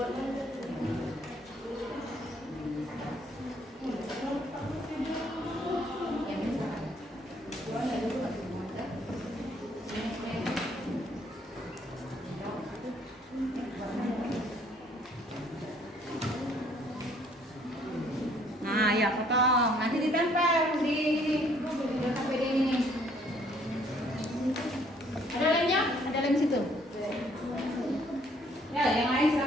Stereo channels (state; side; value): normal; both; correlation 0.63